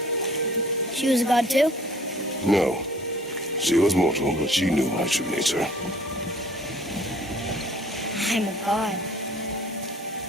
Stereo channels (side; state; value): both; normal; correlation 0.54